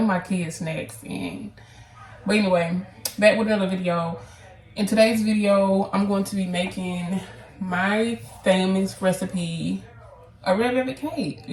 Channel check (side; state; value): both; identical; correlation 1.00